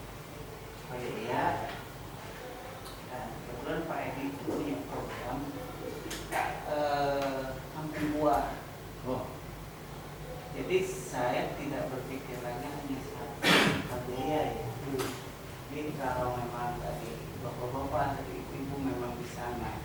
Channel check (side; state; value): both; identical; correlation 1.00